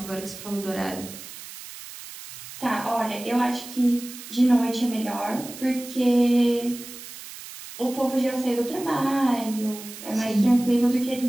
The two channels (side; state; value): right; noise; hiss, 14 dB below the sound